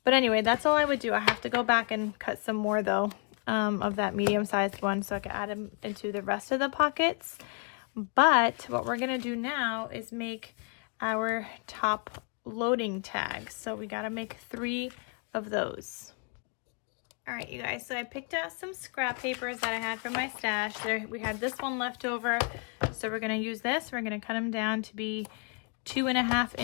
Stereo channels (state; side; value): quieter; right; 38.5 dB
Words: But anyway, that's all I would do. I have to go back and cut some more though, of that medium-sized one so I can add them into the rest of the pockets. But what we're gonna do now is make our top loading tags. So we gotta make 3 of those. All right, you guys, so I picked out some scrap papers that I had from my stash. There, we had this one left over, so we're gonna use this. We're gonna cut them down to be 2.5